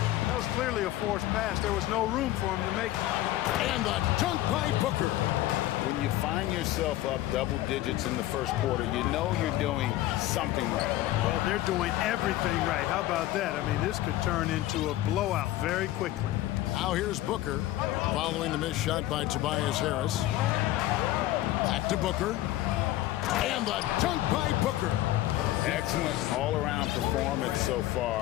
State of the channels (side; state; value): right; quieter; 15.2 dB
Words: That was clearly a forced pass. There was no room for him to make it. And the dunk by Booker. When you find yourself up double digits in the first quarter, you know you're doing something right. Well, they're doing everything right. How about that? I mean, this could turn into a blowout very quickly. Now here's Booker, following the missed shot by Tobias Harris. Back to Booker. And the dunk by Booker. Excellent all-around performance so